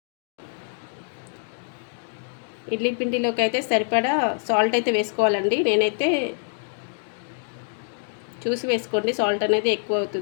ఇడ్లీ పిండిలోకి అయితే సరిపడా సాల్ట్ అయితే వేసుకోవాలండి. నేనైతే చూసి వేసుకోండి, సాల్ట్ అనేది ఎక్కువ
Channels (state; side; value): silent; right; digital silence